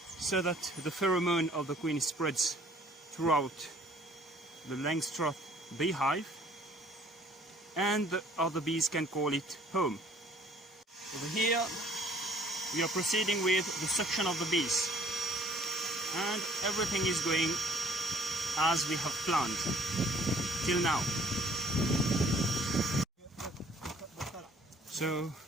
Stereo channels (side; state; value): both; normal; correlation 0.57